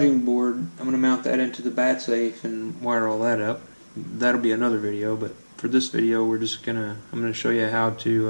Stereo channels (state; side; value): inverted; both; correlation -1.00